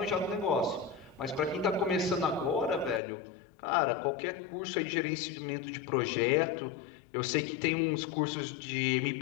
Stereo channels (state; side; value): drops out; right; at 3.0 s